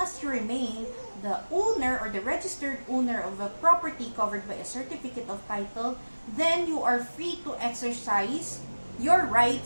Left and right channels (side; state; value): both; inverted; correlation -1.00